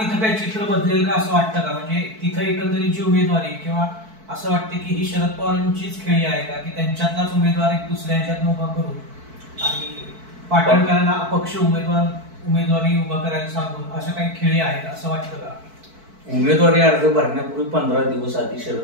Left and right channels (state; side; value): late; left; 4.5 ms